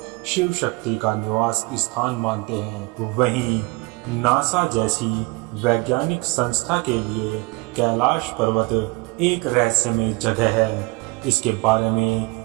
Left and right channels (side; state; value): left; quieter; 25.8 dB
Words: शिव शक्ति का निवास स्थान मानते हैं। वहीं नासा जैसी वैज्ञानिक संस्था के लिए कैलाश पर्वत एक रहस्यमय जगह है। इसके बारे में